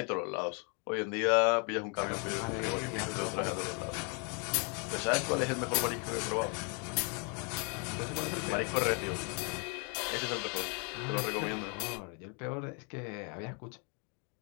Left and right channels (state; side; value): quieter; right; 36.7 dB